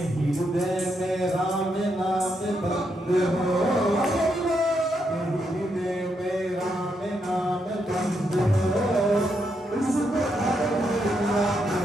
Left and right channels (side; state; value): both; normal; correlation 0.80